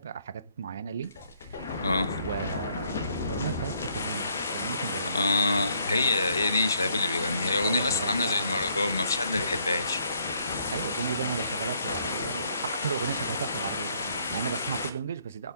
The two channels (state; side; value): inverted; both; correlation -0.68